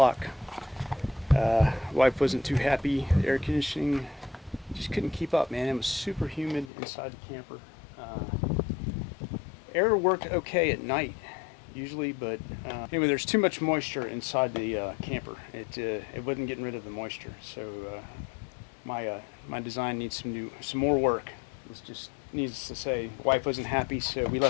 Wife wasn't too happy. The air conditioning just couldn't keep up, man. It was super humid inside the camper. Air worked okay at night, usually, but anyway, there's too much moisture inside the camper. It wasn't getting rid of the moisture, so my design needs some more work. It's just needs to say, wife wasn't happy, so we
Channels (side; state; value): right; drops out; at 6.7 s